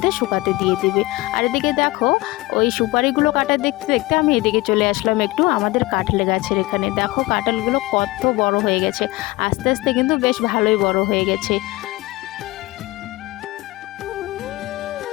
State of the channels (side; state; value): right; quieter; 20.6 dB